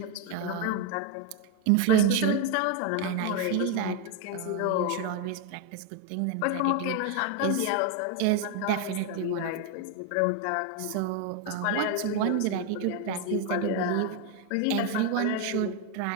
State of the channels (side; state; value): both; different; correlation 0.01